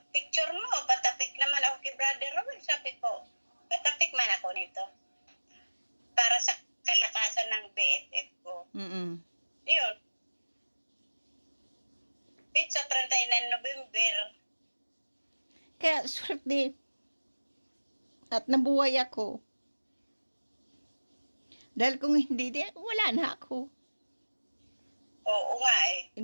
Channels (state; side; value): inverted; both; correlation -1.00